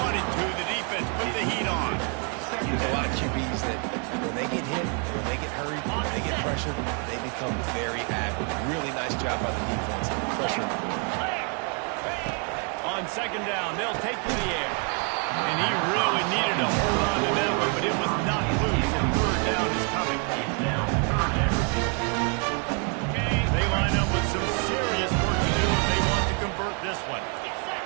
to. The defense put the heat on. There's a lot of QBs that when they get hit, when they get hurried, when they get pressured, they become very active. Really nice job by the defense. Pressure. On second down, they'll take to the air. And he really needed to hold on to that one, but it was not loose, and third down is coming. They line up with some serious work to do if they want to convert this one. Get set,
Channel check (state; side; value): quieter; left; 36.6 dB